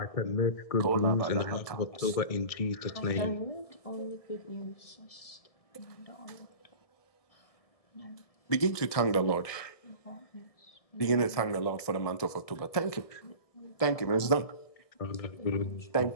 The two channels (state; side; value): late; right; 1.6 ms